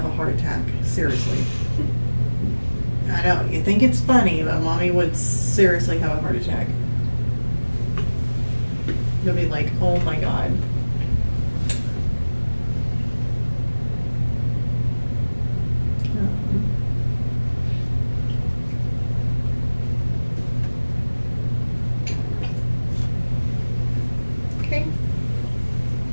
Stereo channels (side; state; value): both; inverted; correlation -1.00